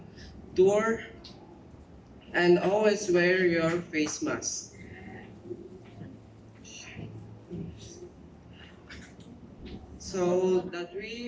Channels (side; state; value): both; identical; correlation 1.00